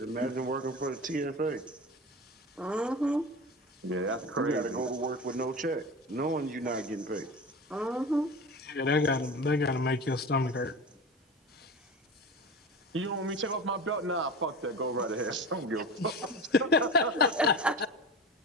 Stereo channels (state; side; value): normal; both; correlation 0.31